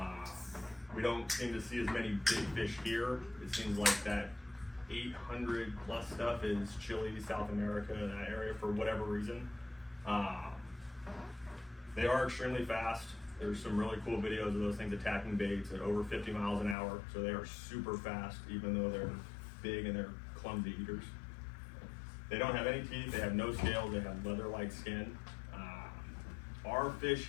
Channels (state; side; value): drops out; right; at 16.8 s